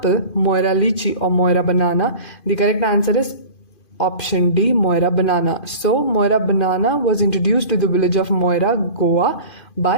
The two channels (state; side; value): late; right; 2.5 ms